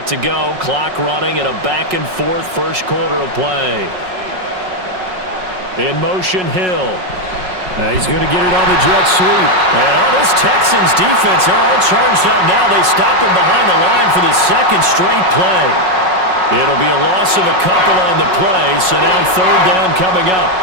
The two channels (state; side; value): late; left; 5.4 ms